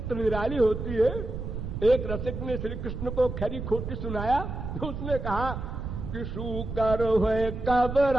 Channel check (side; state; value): right; noise; rumble, 6 dB below the sound